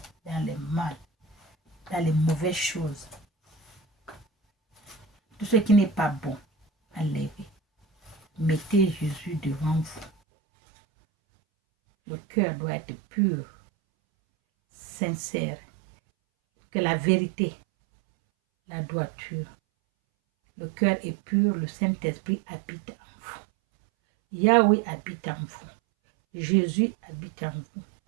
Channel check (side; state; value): left; drops out; at 10.1 s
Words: dans le mal, dans les mauvaises choses. Tout ce qui n'est pas bon, enlevez. Mettez Jésus devant vous. Le cœur doit être pur, sincère, que la vérité, la droiture. Le cœur est pur, le Saint-Esprit habite en vous. Yahweh habite en vous. Jésus habite en vous.